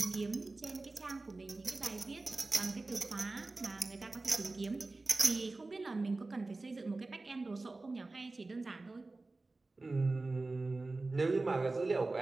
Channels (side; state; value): left; quieter; 3.3 dB